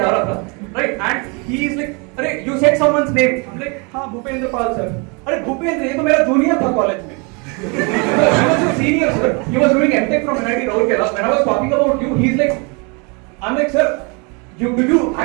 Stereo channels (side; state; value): left; quieter; 31.9 dB